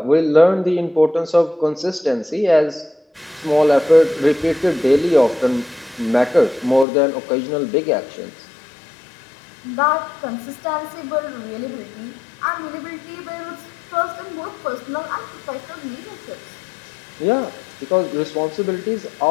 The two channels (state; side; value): drops out; right; at 6.9 s